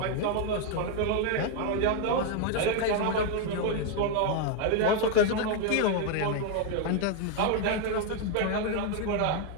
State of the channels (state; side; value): different; both; correlation 0.01